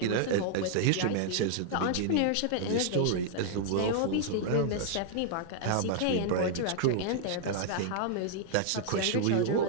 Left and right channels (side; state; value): both; different; correlation -0.01